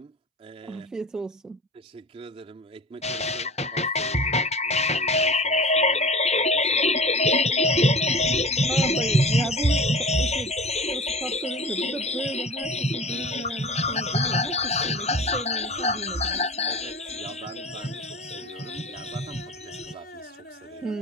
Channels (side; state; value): both; normal; correlation 0.37